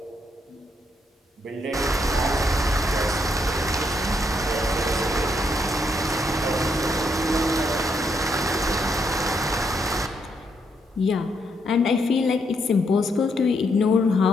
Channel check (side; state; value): both; normal; correlation 0.76